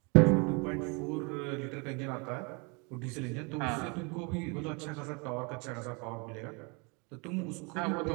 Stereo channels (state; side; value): quieter; left; 31.5 dB